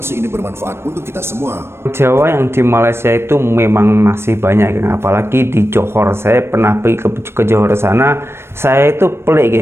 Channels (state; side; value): late; left; 0.12 ms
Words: ini bermanfaat untuk kita semua. Jawa yang di Malaysia itu memang masih banyak, geng. Apalagi di Johor. Saya pernah pergi ke Johor sana. Saya itu pelik,